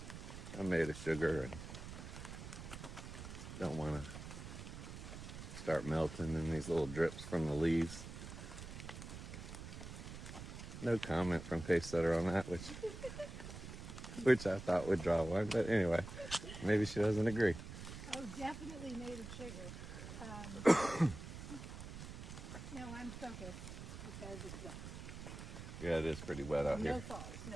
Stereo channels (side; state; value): right; noise; rumble, 10 dB below the sound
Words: I'm made of sugar and don't want to start melting in these little drips from the leaves. No comment from Pacesetter on that, which I thought would draw one, but anyway, maybe she doesn't agree. Oh, definitely made of sugar. No, I'm focused because it's wet. Yeah, it is pretty wet out here. No